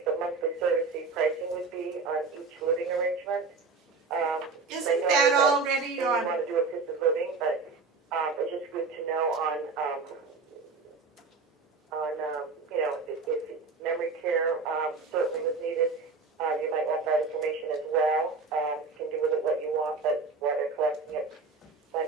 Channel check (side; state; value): left; quieter; 4.3 dB